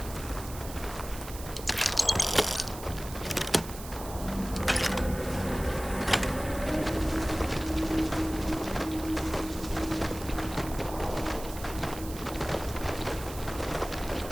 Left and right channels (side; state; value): right; noise; hiss, 13 dB below the sound